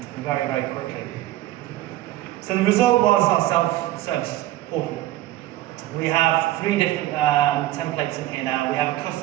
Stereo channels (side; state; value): left; quieter; 15.4 dB